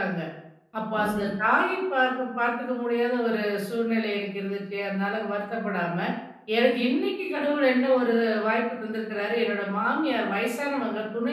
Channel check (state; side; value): identical; both; correlation 1.00